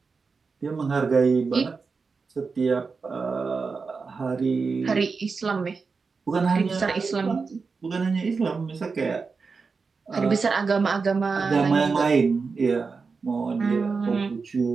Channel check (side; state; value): left; quieter; 4.7 dB